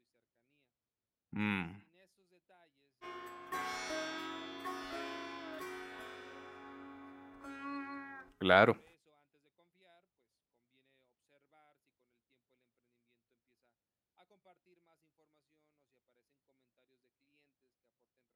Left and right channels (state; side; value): identical; both; correlation 1.00